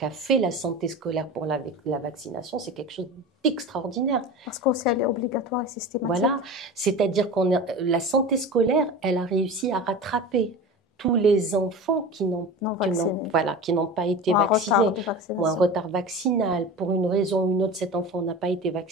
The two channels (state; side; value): normal; both; correlation 0.31